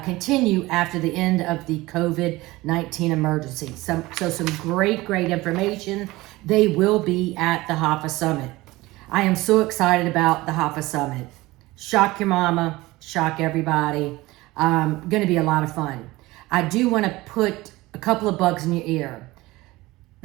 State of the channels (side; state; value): left; quieter; 19.8 dB